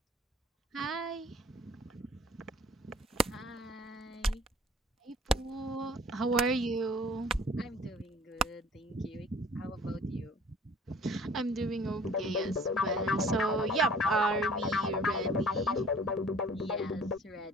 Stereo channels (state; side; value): normal; both; correlation 0.50